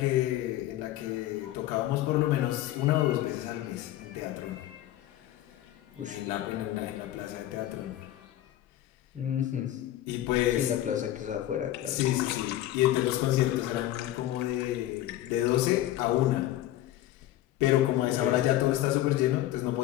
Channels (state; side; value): quieter; right; 14.0 dB